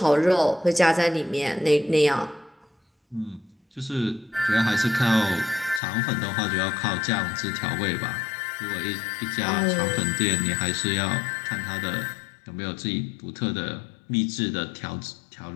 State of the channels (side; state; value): right; drops out; at 5.8 s